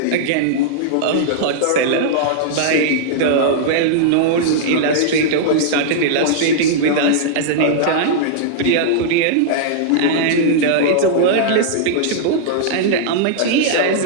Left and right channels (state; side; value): different; both; correlation -0.02